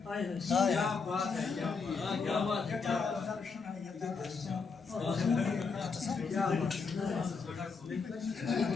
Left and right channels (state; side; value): quieter; right; 5.0 dB